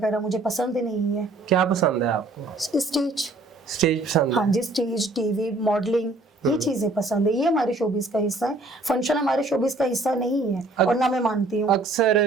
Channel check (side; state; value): left; quieter; 3.0 dB